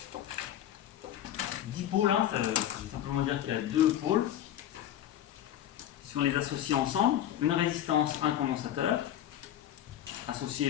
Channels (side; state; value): right; quieter; 11.5 dB